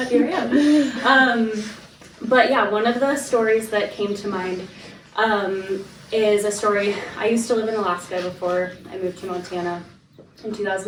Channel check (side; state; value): both; identical; correlation 1.00